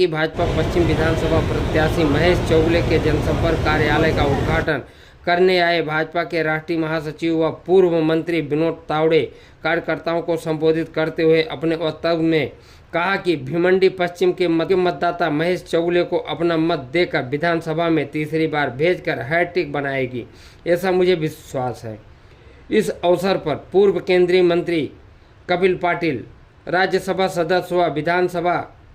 भाजपा पश्चिम विधानसभा प्रत्याशी महेश चौगले के जनसंपर्क कार्यालय का उद्घाटन करने आए भाजपा के राष्ट्रीय महासचिव व पूर्व मंत्री विनोद तावड़े कार्यकर्ताओं को संबोधित करते हुए अपने वक्तव्य में कहा कि भिवंडी पश्चिम के मतदाता महेश चौगले को अपना मत देकर विधानसभा में तीसरी बार भेजकर हैट्रिक बनाएगी, ऐसा मुझे विश्वास है। इस अवसर पर पूर्व केंद्रीय मंत्री कपिल पाटिल, राज्यसभा सदस्य व विधानसभा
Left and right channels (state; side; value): identical; both; correlation 1.00